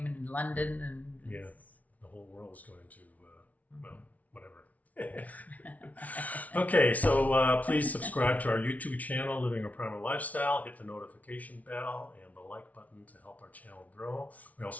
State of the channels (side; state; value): right; late; 0.071 ms